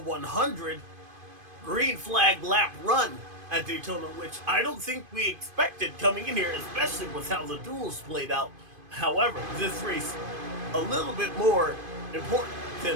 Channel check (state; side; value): late; left; 2.5 ms